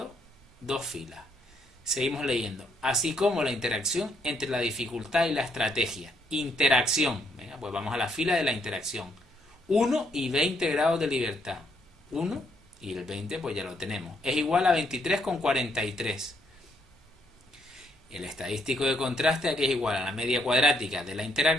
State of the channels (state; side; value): normal; both; correlation 0.73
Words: dos filas. Seguimos leyendo. Así como la interacción entre la dificultad y la estrategia. Interacción. Venga, pues vamos a la fila de la interacción. 1 y 20 grados de libertad. 1 y el 20 pues ya lo tenemos. Es igual a 23,43. El estadístico de contraste aquí es igual a la media cuadrática de la